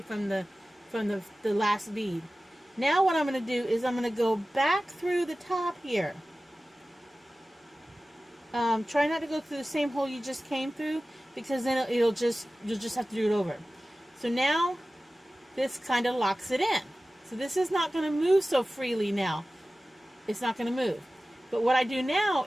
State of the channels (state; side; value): normal; both; correlation 0.96